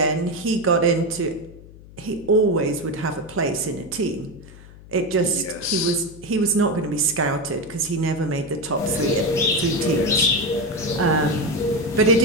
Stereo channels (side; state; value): left; noise; hum, 20 dB below the sound